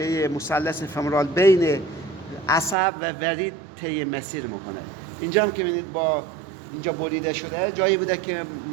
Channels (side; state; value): left; drops out; at 2.8 s